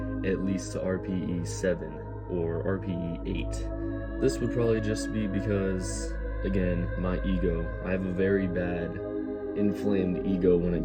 at least to RPE 7 or RPE 8. This would probably just be because, again, my ego. I have a very bad inflamed ego when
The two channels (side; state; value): both; identical; correlation 1.00